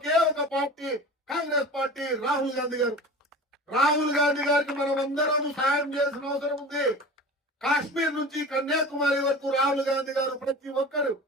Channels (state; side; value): normal; both; correlation 0.36